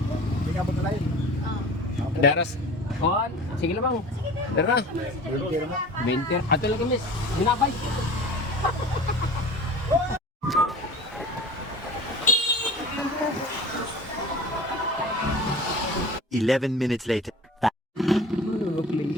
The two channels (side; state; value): both; normal; correlation 0.38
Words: ka punta tayo. Daras. On. Sige lang bang. Dara. 20. Ato lang kami. Binabay. Eleven minutes later.